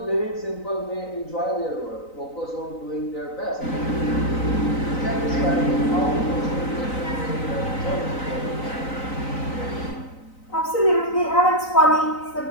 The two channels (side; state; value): right; late; 3.9 ms